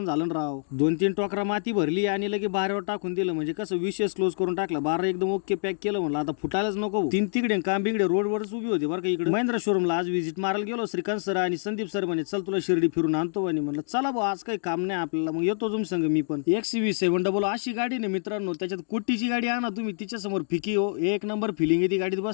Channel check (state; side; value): silent; right; digital silence